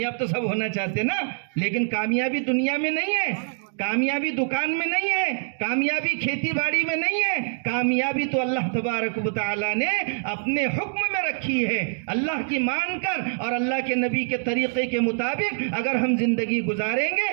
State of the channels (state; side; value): silent; left; digital silence